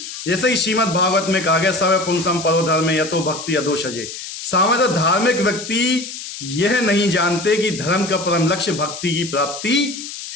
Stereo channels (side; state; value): left; noise; hiss, 10 dB below the sound